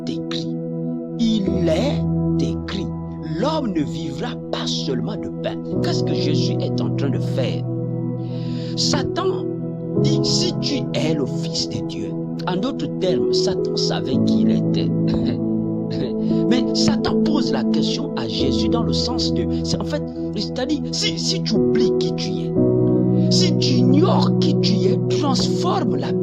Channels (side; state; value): both; identical; correlation 1.00